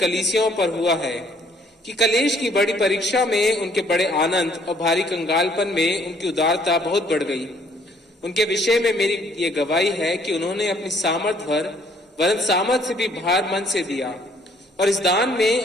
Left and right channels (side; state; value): both; normal; correlation 0.62